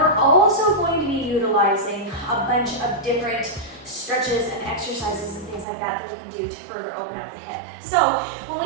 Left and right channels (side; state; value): left; drops out; at 5.7 s